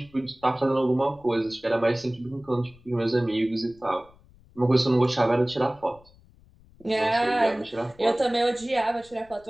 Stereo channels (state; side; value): noise; left; rumble, 27 dB below the sound